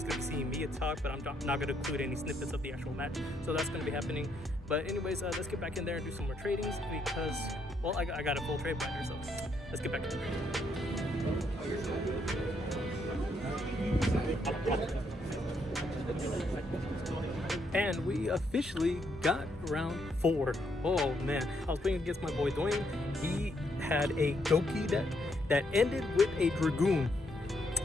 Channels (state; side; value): normal; both; correlation 0.74